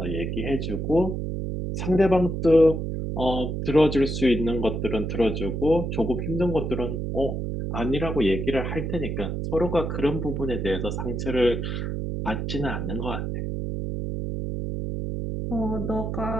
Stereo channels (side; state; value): right; noise; hum, 3 dB below the sound